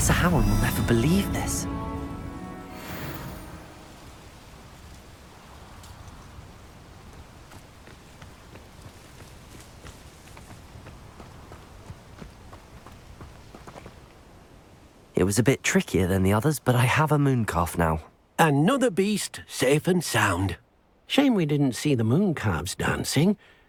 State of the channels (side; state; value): both; identical; correlation 1.00